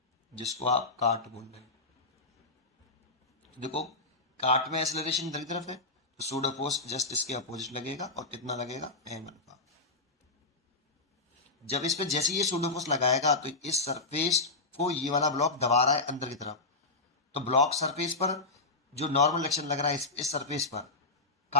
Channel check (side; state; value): right; quieter; 3.4 dB